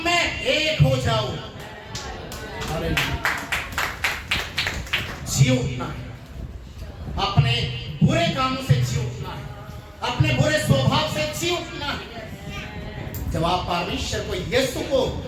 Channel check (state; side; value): identical; both; correlation 1.00